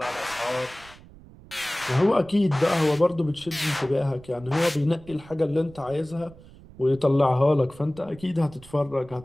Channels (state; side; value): noise; right; rumble, 21 dB below the sound